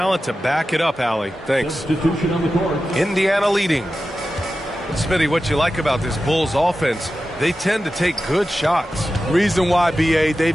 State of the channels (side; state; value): both; normal; correlation 0.93